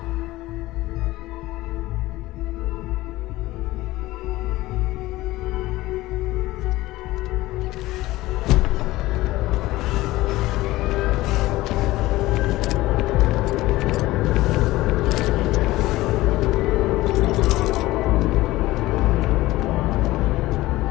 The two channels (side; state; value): right; quieter; 17.9 dB